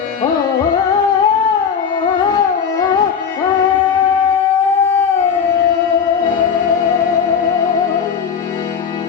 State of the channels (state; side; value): quieter; right; 6.8 dB